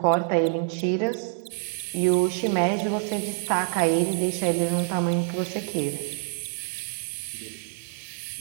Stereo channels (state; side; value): silent; left; digital silence